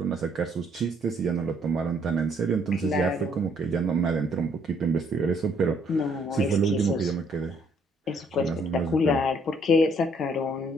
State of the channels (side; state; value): both; normal; correlation 0.66